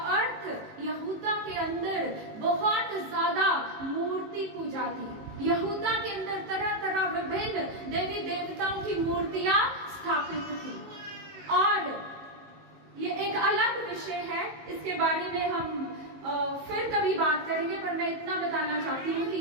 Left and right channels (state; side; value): late; left; 19 ms